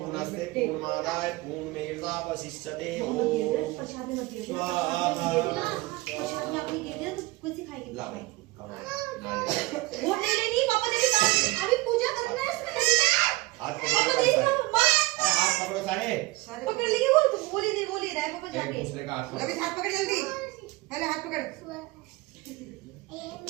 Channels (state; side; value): quieter; left; 21.0 dB